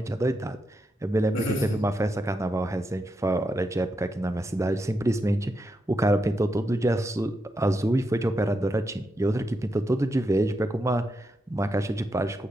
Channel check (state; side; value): normal; both; correlation 0.84